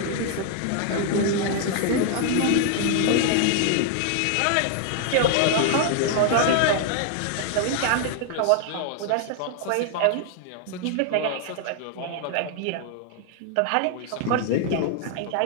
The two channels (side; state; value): both; different; correlation 0.00